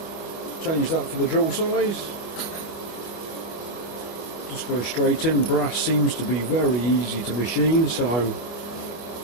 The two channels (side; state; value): right; late; 25 ms